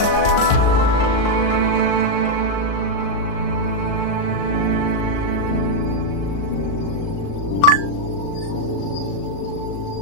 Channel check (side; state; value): right; late; 38 ms